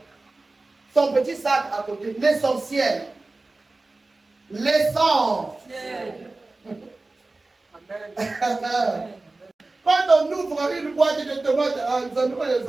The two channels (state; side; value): quieter; left; 3.2 dB